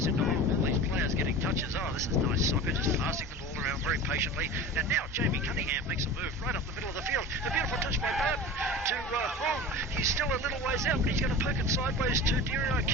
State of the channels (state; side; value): normal; both; correlation 0.34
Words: in the hole. All these players getting touches. Oh, this is nice soccer, just passing the ball around very patiently. And now Jamie Cunningham makes a move right up the middle of the field. A beautiful touch by Barton to Hong. He's still a little ways out, but he's going to poke it sideways to